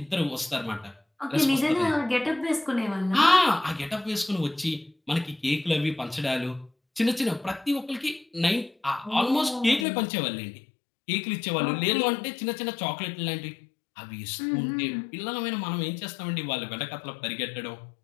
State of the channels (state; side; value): drops out; right; at 9.9 s